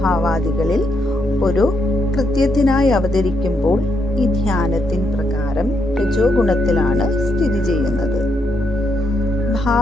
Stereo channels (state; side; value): normal; both; correlation 0.79